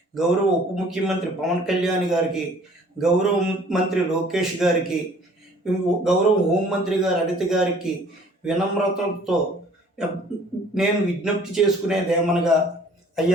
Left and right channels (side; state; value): both; normal; correlation 0.54